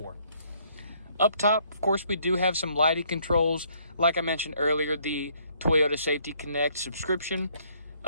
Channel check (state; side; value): inverted; both; correlation -0.66